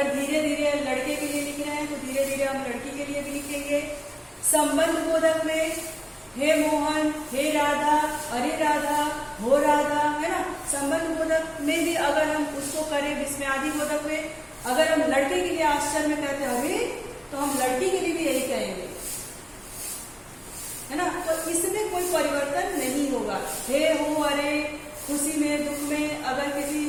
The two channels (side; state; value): both; identical; correlation 1.00